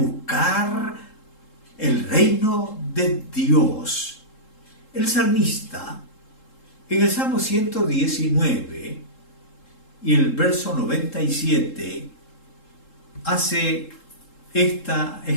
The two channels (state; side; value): late; right; 3.7 ms